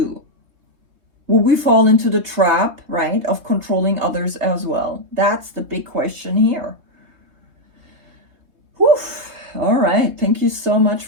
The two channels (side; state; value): left; late; 3.2 ms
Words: Will we fall into the trap, right, of controlling others as well? That's the big question here. Whew. All right. Thank you so much